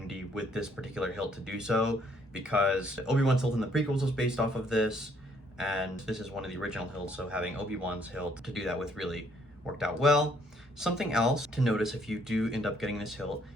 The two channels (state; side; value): normal; both; correlation 0.67